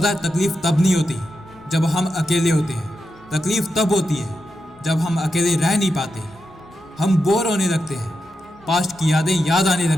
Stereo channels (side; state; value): both; normal; correlation 0.87